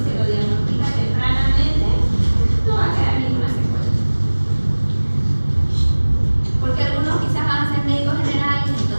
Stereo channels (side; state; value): both; inverted; correlation -1.00